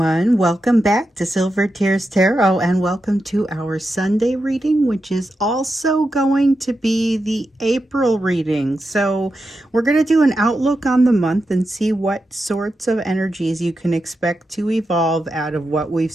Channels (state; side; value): normal; both; correlation 0.88